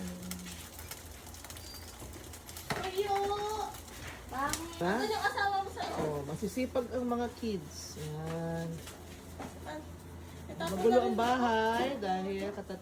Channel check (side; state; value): both; identical; correlation 1.00